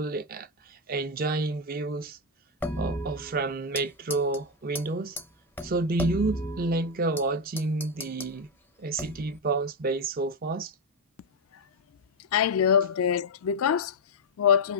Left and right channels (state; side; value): normal; both; correlation 0.04